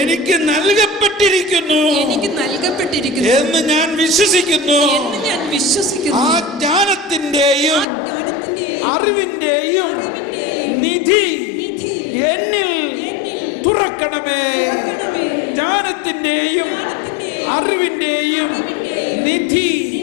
നൽകപ്പെട്ടിരിക്കുന്നു എന്ന് ഞാൻ വിശ്വസിക്കുന്നു. ആ ജ്ഞാനത്തിന്റെയും അറിവിന്റെയും നിധി എന്നിൽ തുറക്കണമേ. ജ്ഞാനത്തിന്റെയും അറിവിന്റെയും നിധി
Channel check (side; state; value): right; drops out; at 7.9 s